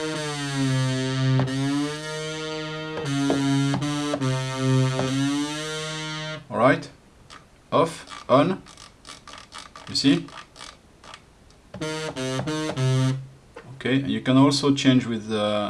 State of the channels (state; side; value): identical; both; correlation 1.00